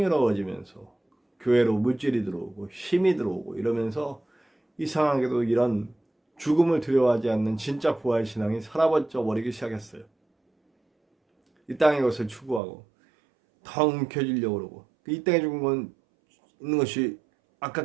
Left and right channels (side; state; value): left; drops out; at 12.6 s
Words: 교회로 물질이 들어오고 힘이 들어오고 이러면서 이상하게도 이런 죽음을 두려워하지 않는 진짜 부활 신앙이 사라져 버리기 시작했어요. 이 땅의 것을 추구하고 더 움켜쥐려고 그러고, 이 땅에 있는 것이